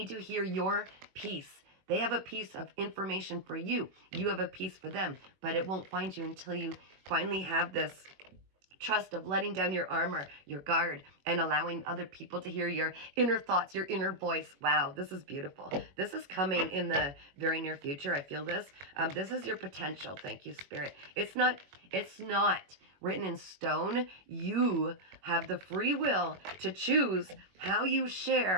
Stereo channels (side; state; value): left; late; 21 ms